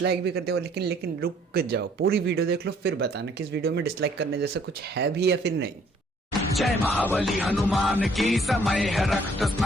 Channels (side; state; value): both; normal; correlation 0.62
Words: भी करते हो, लेकिन रुक जाओ, पूरी वीडियो देख लो फिर बताना कि इस वीडियो में डिसलाइक करने जैसा कुछ है भी या फिर नहीं। जय महाबली हनुमान की, समय है रक्त